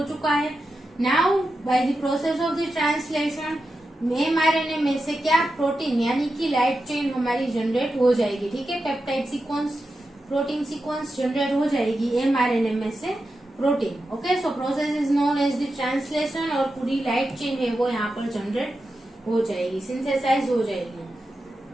चुका है। Now by the process of the translation mRNA में से क्या, प्रोटीन यानी कि लाइट चेन हमारी जनरेट हो जाएगी। ठीक है, peptide sequence, protein sequence generate हो जाएगी एमआरएनए में से protein. Okay, so process is known as the translation और पूरी लाइट चेन है वो यहाँ पर जनरेट हो जाएगी, सिंथेसाइज हो जाएगी।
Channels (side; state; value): both; normal; correlation 0.90